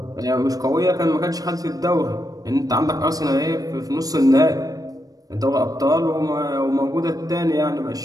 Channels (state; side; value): late; left; 0.18 ms